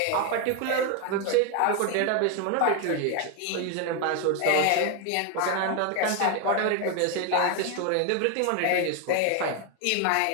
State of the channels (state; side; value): different; both; correlation 0.01